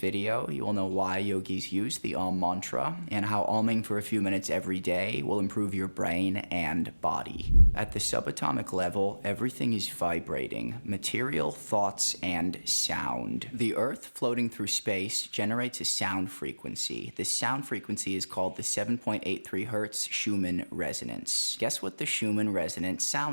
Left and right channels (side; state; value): both; inverted; correlation -1.00